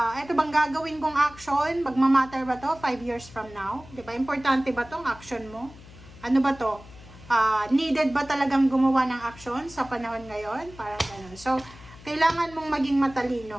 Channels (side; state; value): left; noise; hum, 20 dB below the sound